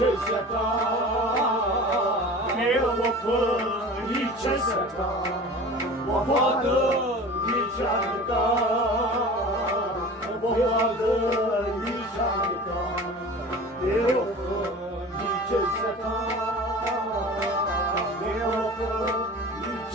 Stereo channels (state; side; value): normal; both; correlation 0.38